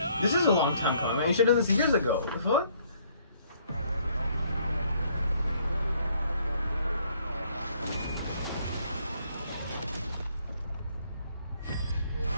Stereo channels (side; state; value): both; inverted; correlation -0.65